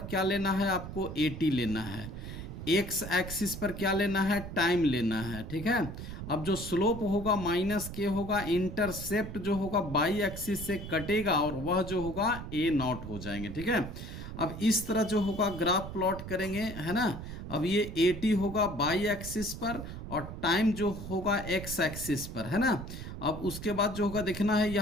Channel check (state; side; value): noise; right; rumble, 9 dB below the sound